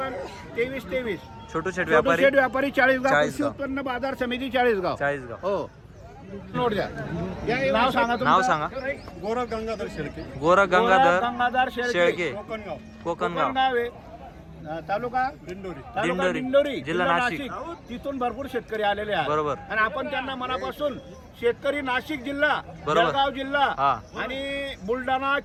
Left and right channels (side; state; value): both; identical; correlation 1.00